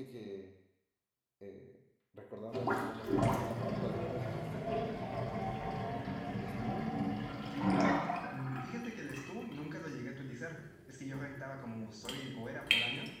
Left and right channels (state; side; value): identical; both; correlation 1.00